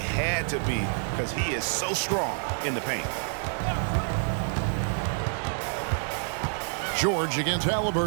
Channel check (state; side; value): silent; left; 60 dB below the other